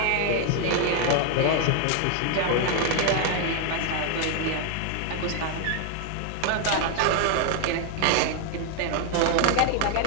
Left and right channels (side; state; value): both; different; correlation 0.01